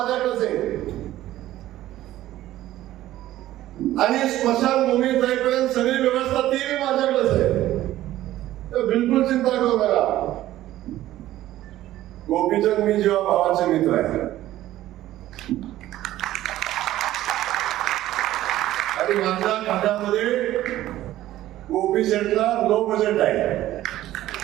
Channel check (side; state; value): left; quieter; 14.4 dB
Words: आहे. आणि स्मशानभूमीत जाईपर्यंत सगळी व्यवस्था ती माझ्याकडेच आहे. तर बिलकुल चिंता करू नका. गोपीचंद मी जेव्हा भावाचे मित्र आहे आणि माझ्या खात्यामध्ये गोपी शेटला लो बजेट आहे.